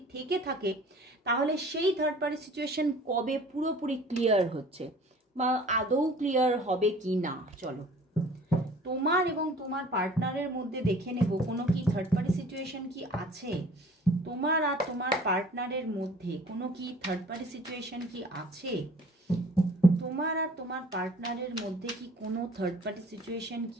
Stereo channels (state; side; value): normal; both; correlation 0.49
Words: থেকে থাকে তাহলে সেই থার্ড পার্টি সিচুয়েশন কবে পুরোপুরি ক্লিয়ার হচ্ছে বা আদৌ ক্লিয়ার হবে কি না, চলো তোমার এবং তোমার পার্টনারের মধ্যে দেখে নেব কোনো কি থার্ড পার্টি সিচুয়েশন কি আছে। তোমার আর তোমার পার্টনারের মধ্যে কোনো কি থার্ড পার্টি সিচুয়েশন কি আছে, তোমার আর তোমার পার্টনারের মধ্যে কি কোনো থার্ড পার্টি সিচুয়েশন